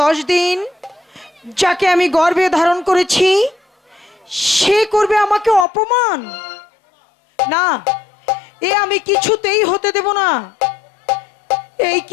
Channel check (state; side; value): drops out; right; at 5.7 s